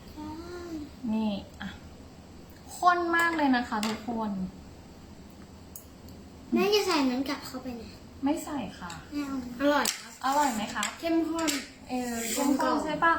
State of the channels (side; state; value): both; identical; correlation 1.00